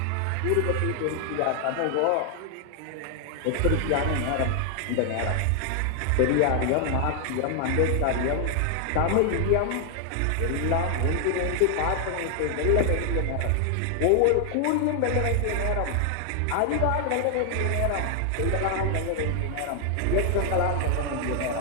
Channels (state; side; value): different; both; correlation 0.00